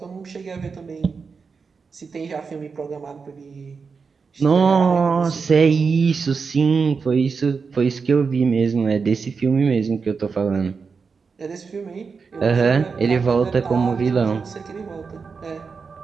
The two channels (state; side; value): quieter; left; 5.2 dB